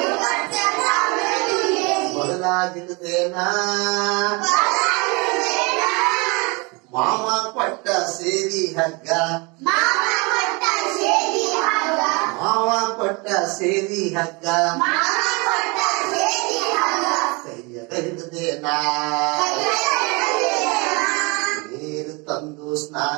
ಬದಲಾಗಿರುದೇನಾ ಮಾಮ ಕೊಟ್ಟ ಸೇರಿ ಹಗ್ಗ ಮಾವ ಕೊಟ್ಟ ಸೇರಿ ಹಗ್ಗ ಕೈಯಾಗ ಹಿಡಿದೇನಾ ನೀರು ತಂದು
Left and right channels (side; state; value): left; quieter; 28.5 dB